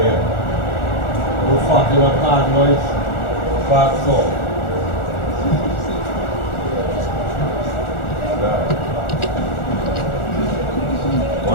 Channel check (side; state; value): right; late; 1.4 ms